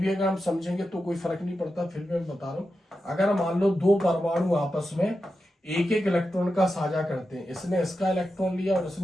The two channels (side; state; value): both; normal; correlation 0.90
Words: भी अगर हम समझेंगे तो कोई फर्क नहीं पड़ता, फिर भी मैं बता रहा हूं। अगर मान लो दो परमाणु आपस में एक इलेक्ट्रॉन का साझा करते हैं, इसने इसका इलेक्ट्रॉन लिया और